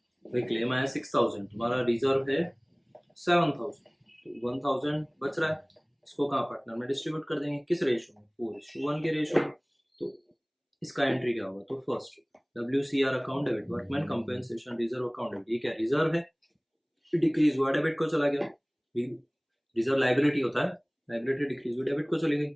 भाई क्लेम आया 6,000, तुम्हारा रिजर्व है 7,000, तो 1,000 बच रहा है। इसको कहाँ पार्टनर में डिस्ट्रीब्यूट कर देंगे, किस रेशियो में 4:1 के रेशियो में। तो इसका एंट्री क्या होगा, तो first WCR account debit, workman compensation reserve account debit, ये क्या रिजर्व है, डिक्रीज हुआ डेबिट को चला गया। रिजर्व लाइबिलिटी होता है, लाइबिलिटी डिक्रीज हुई डेबिट को चली गई,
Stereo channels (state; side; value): identical; both; correlation 1.00